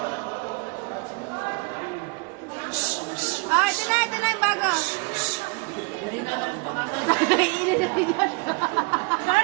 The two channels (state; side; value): quieter; left; 30.4 dB